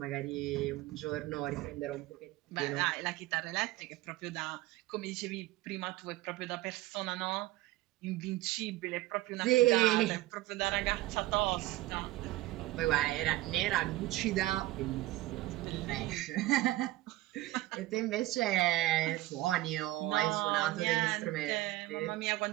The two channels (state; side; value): quieter; left; 17.5 dB